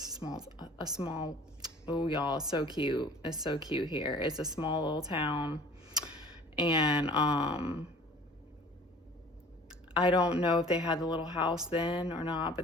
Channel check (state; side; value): normal; both; correlation 0.47